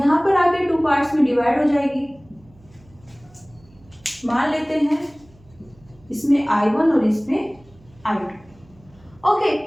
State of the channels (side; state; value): right; noise; hum, 27 dB below the sound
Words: पर आके टू पार्ट्स में डिवाइड हो जाएगी। मान लेते हैं इसमें I1 और इसमें I2। ओके,